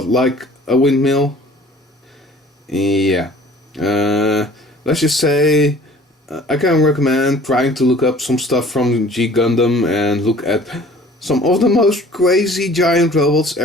like a windmill. Yeah. Let's just say I can recommend trying to look up some stuff from G-gundam and look at some of the most crazy giant robots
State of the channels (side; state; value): both; normal; correlation 0.50